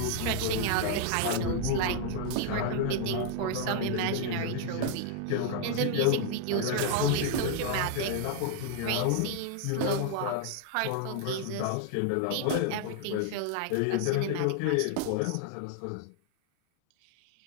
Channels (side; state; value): both; different; correlation 0.00